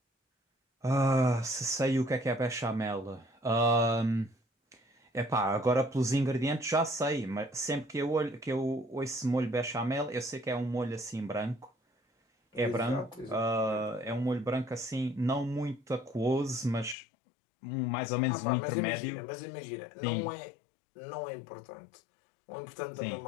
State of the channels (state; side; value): drops out; right; at 16.9 s